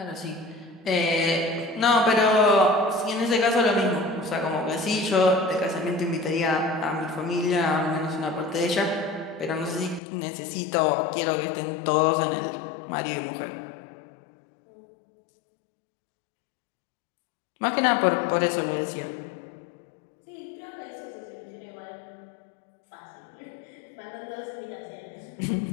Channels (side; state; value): right; drops out; at 10.0 s